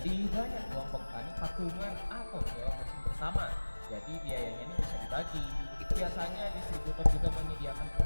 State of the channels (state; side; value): inverted; both; correlation -1.00